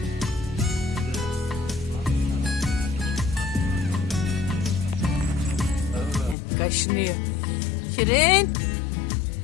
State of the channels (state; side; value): drops out; right; at 6.4 s